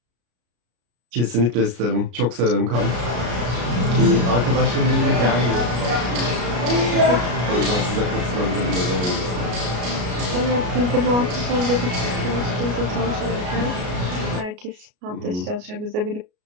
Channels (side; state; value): left; late; 33 ms